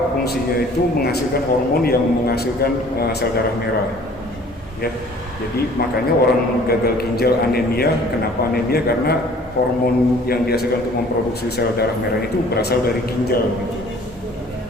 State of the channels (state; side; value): normal; both; correlation 0.52